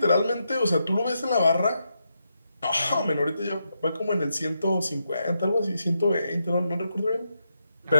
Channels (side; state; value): both; inverted; correlation -0.83